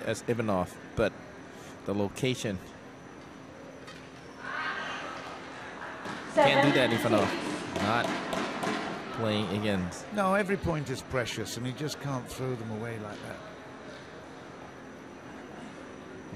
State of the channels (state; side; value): identical; both; correlation 1.00